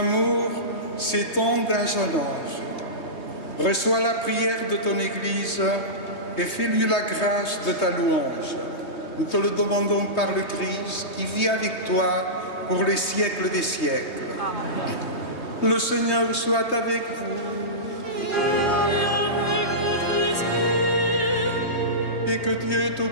s'étend d'âge en âge. Reçois la prière de ton Église et fais-lui la grâce de ta louange. Nous te le demandons par le Christ qui vit avec toi pour les siècles des siècles. Le Seigneur soit avec vous Et avec votre esprit, et que Dieu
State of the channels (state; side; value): late; right; 3.2 ms